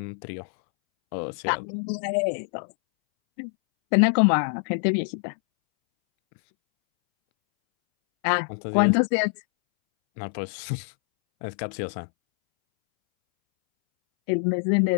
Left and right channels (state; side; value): silent; right; 62 dB below the other